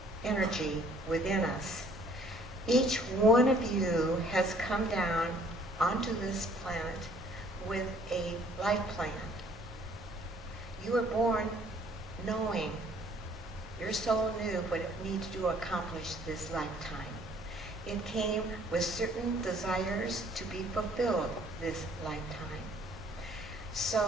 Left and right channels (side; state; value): both; normal; correlation 0.59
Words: energy within us. Each one of you has come down onto this planet with a life plan. You were born knowing, your soul knew what it needed to accomplish this lifetime. It came with certain desires to be fulfilled this lifetime.